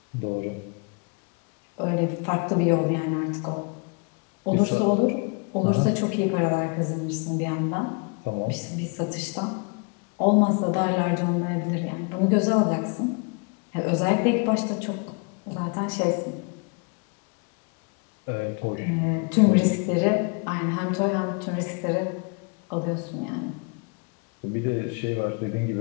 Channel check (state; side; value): quieter; right; 34.1 dB